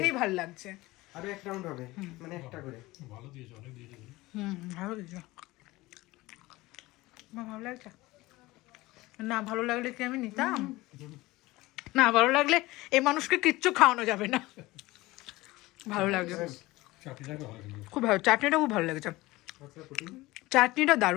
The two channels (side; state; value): right; quieter; 19.7 dB